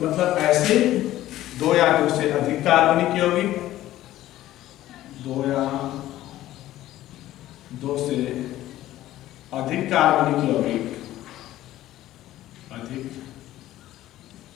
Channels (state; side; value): quieter; right; 14.5 dB